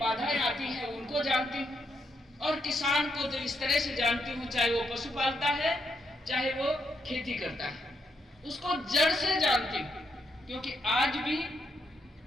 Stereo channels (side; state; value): both; normal; correlation 0.79